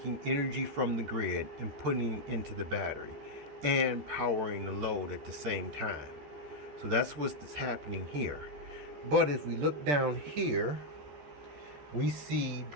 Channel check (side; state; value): left; late; 14 ms